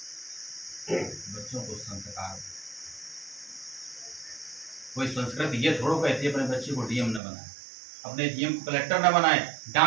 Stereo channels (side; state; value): left; drops out; at 7.2 s